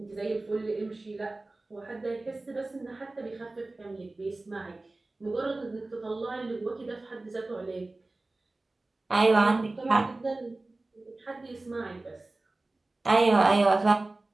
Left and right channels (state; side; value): quieter; left; 3.0 dB